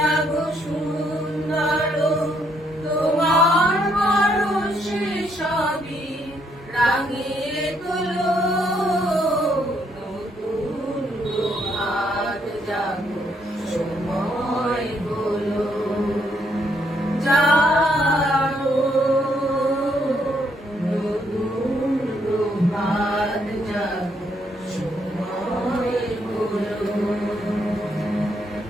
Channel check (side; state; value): both; normal; correlation 0.72